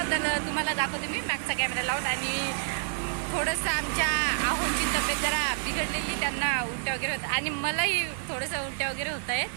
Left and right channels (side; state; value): left; silent; digital silence